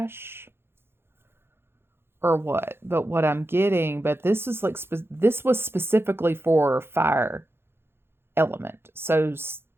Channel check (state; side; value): late; left; 0.11 ms